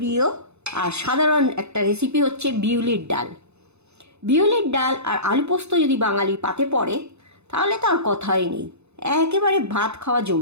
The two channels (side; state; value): left; late; 0.81 ms